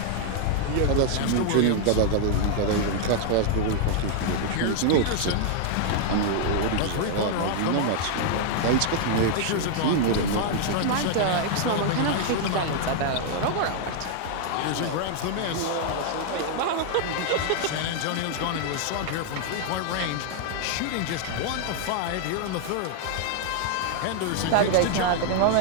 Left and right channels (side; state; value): both; different; correlation -0.01